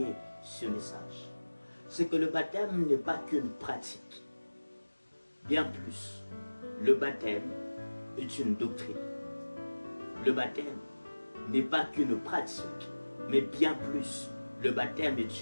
ce message. C'est que le baptême n'est pas qu'une pratique. Bien plus, le baptême est une doctrine. Le baptême n'est pas qu'une pratique, mais bien plus, le baptême est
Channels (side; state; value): both; inverted; correlation -1.00